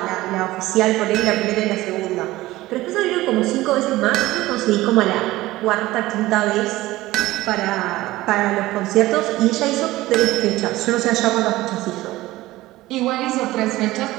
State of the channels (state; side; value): quieter; left; 17.6 dB